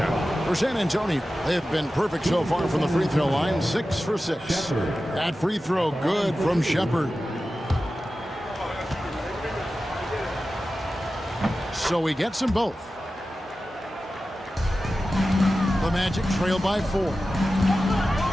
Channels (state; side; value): normal; both; correlation 0.94